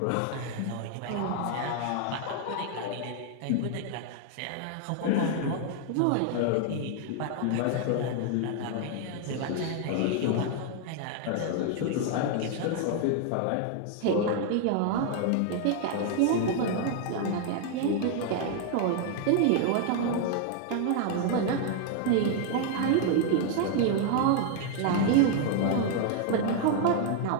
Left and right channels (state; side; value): different; both; correlation 0.00